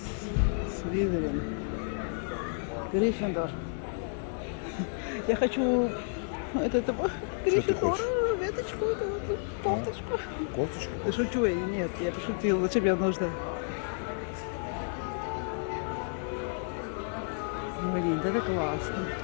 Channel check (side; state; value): right; silent; 57 dB below the other